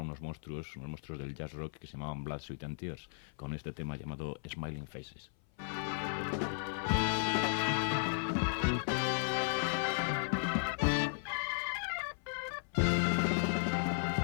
monstruos del jazz rock que se llamaban Blood, Sweat and Tears, con este tema llamado Smiling Faces.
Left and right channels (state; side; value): silent; right; 54 dB below the other